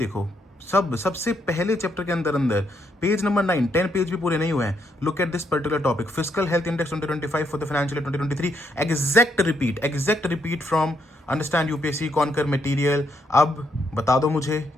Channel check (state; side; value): normal; both; correlation 0.75